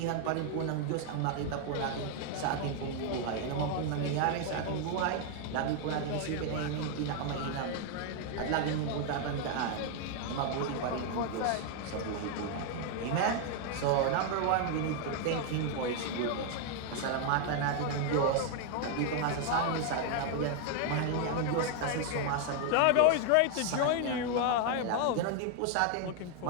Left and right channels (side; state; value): both; different; correlation 0.00